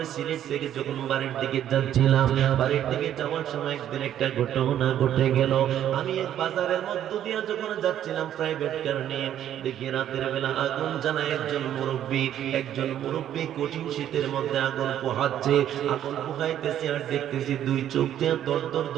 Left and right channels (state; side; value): quieter; left; 10.9 dB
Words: সিলেট থেকে যখন বাড়ির দিকে যাচ্ছিলাম, বাড়ির দিকে যাওয়ার সময় একদিন একটা ঘটনা ঘটে গেল। আমি এক বাজারের মধ্য দিয়ে যখন যাচ্ছিলাম প্রাইভেট কার নিয়ে, দেখি রাতের বেলা আগুন জ্বালায় একজন মুরব্বী কঠিন শীতের মধ্যে আগুন পোহাচ্ছে, আগুন পোহাইতেছে আর দেখতেছি দুই চোখ দিয়ে দর দর